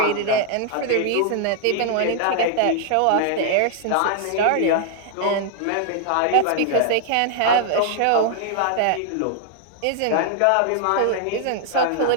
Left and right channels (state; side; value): different; both; correlation 0.00